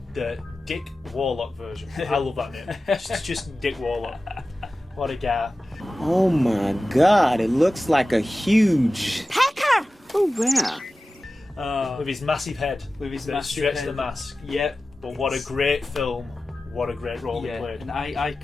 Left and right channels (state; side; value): normal; both; correlation 0.95